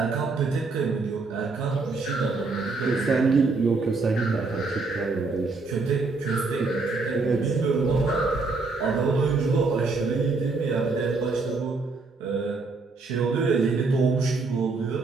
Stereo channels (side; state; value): left; quieter; 3.9 dB